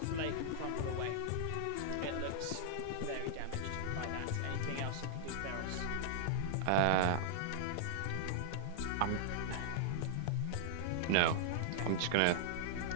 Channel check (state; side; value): different; both; correlation -0.01